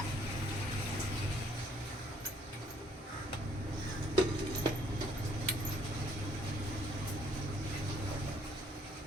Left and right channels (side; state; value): both; normal; correlation 0.64